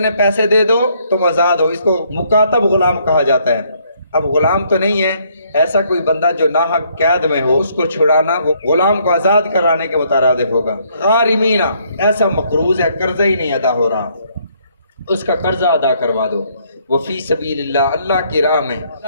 پیسے دے دو تم آزاد ہو، اس کو مکاتب غلام کہا جاتا ہے۔ اب غلام تو نہیں ہے، ایسا کوئی بندہ جو ناحق قید میں ہو اس کو چھڑانا وہ غلام کو آزاد کرانے کے مترادف ہوگا۔ غارمین، ایسا مقروض ہے قرضہ ہی نہیں ادا ہو رہا، اس کا قرضہ ادا کروا دو۔ وفی سبیل اللہ، اللہ کی راہ میں،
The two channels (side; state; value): both; inverted; correlation -0.68